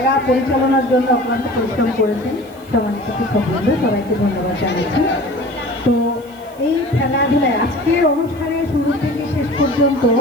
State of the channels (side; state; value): right; noise; hiss, 26 dB below the sound